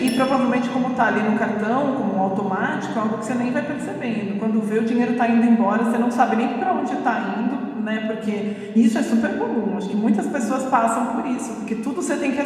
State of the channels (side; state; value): both; identical; correlation 1.00